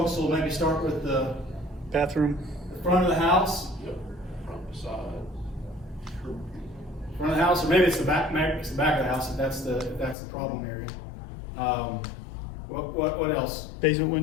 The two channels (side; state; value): right; drops out; at 10.2 s